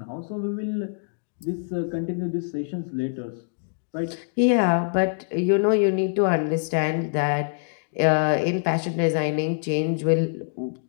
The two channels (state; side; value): silent; right; digital silence